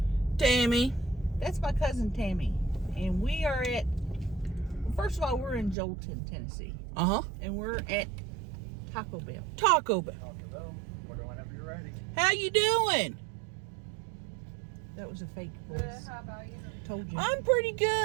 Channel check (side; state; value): left; drops out; at 5.8 s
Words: Tammy. That's my cousin Tammy, and we are at, first of all, we're in Jolton, Tennessee. And we're at Taco Bell. Taco Bell. Order whenever you're ready. How you doing? That was a fake voice. How about you? Told you. I'm pretty